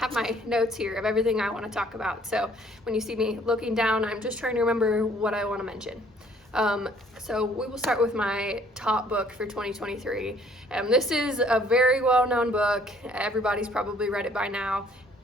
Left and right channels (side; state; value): both; normal; correlation 0.60